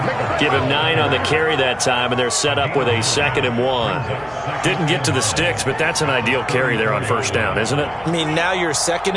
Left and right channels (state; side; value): noise; left; hum, 23 dB below the sound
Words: Give him 9 on the carry that time, and they're set up with a 2nd and 1. Didn't get to the sticks, but that's an ideal carry there on first down, isn't it? I mean, now you're 2nd